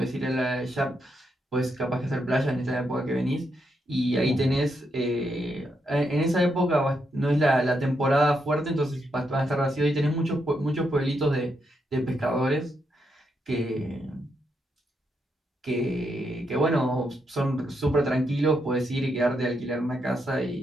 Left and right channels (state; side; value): normal; both; correlation 0.81